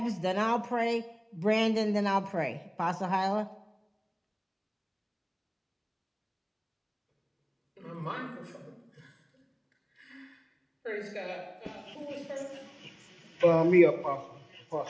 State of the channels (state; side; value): identical; both; correlation 1.00